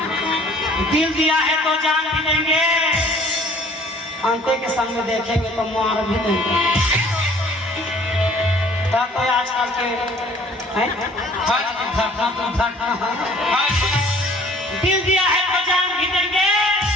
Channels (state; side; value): normal; both; correlation 0.54